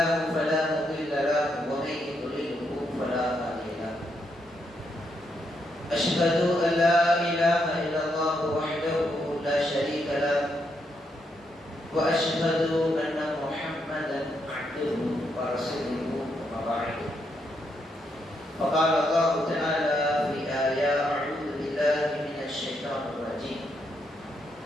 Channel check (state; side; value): normal; both; correlation 0.79